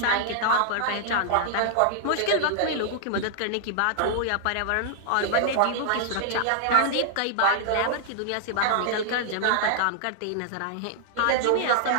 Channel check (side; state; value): both; different; correlation -0.01